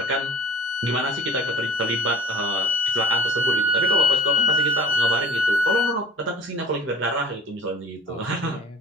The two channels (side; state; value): both; normal; correlation 0.42